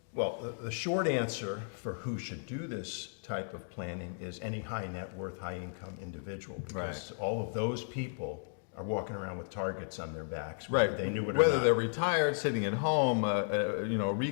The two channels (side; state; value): right; silent; digital silence